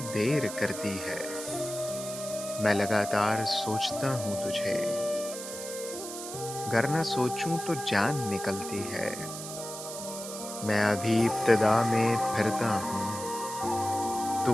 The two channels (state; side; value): noise; right; hiss, 9 dB below the sound